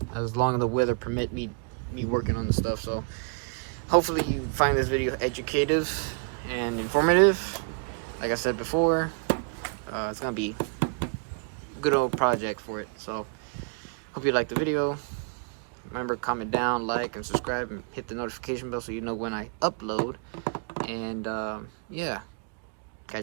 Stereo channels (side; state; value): left; quieter; 33.5 dB